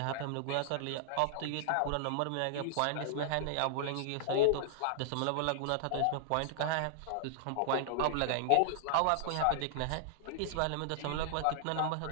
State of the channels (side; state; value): both; different; correlation -0.01